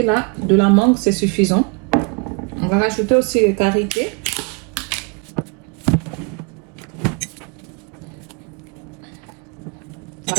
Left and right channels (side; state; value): left; quieter; 32.2 dB